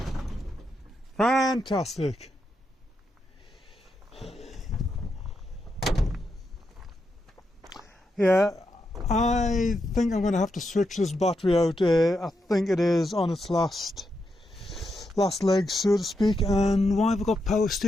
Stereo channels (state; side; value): normal; both; correlation 0.84